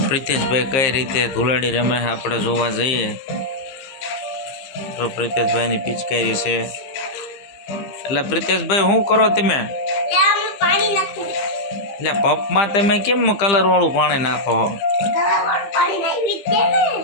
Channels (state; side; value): late; right; 15 ms